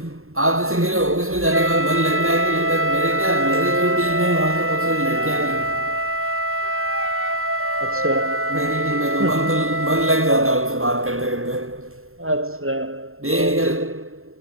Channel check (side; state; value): left; late; 0.61 ms